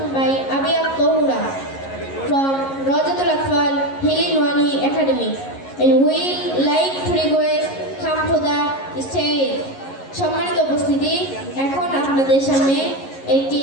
by Abi Tohura from Rajatul Atfal Hilli Nuani Academy, and we like to request come to the stage. সম্মানিত উপস্থিতি, এখন আপনাদের সামনে একটি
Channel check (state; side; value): late; right; 11 ms